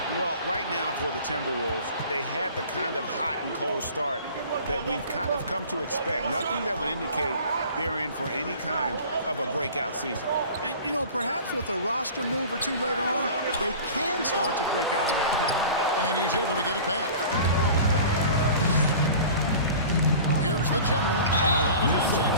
Well, right now for the Timberwolves, they had the kind of hot and cold start that we've kind of come to expect. Nothing that would indicate they're in for any kind of a breakout season. And, you know, perhaps with a roster move or two later on, they can start to break out of that pack. And he's able to get it back. Here's the general, and a lot of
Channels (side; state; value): both; inverted; correlation -0.41